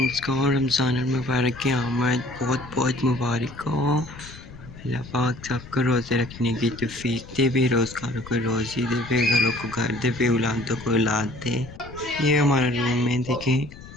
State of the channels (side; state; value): left; noise; rumble, 16 dB below the sound